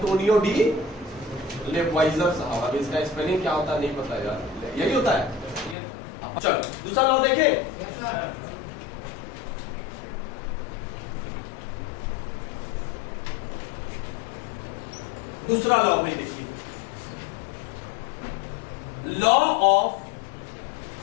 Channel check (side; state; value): right; drops out; at 5.8 s